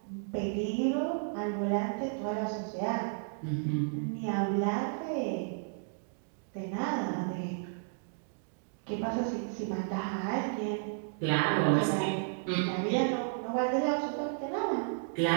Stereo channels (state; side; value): silent; left; digital silence